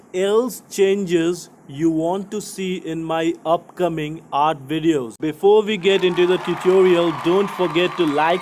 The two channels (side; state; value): both; identical; correlation 1.00